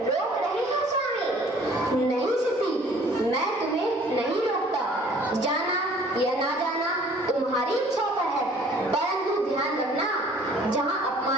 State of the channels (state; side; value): normal; both; correlation 0.54